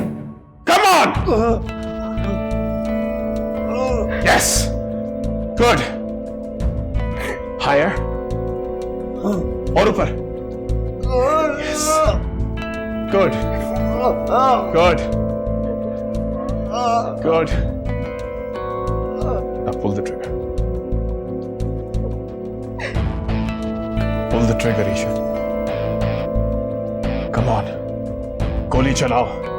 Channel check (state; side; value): identical; both; correlation 1.00